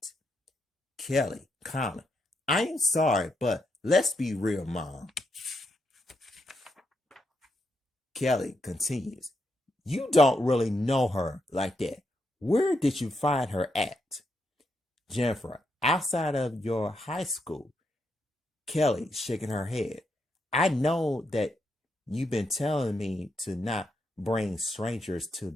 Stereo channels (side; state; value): both; normal; correlation 0.81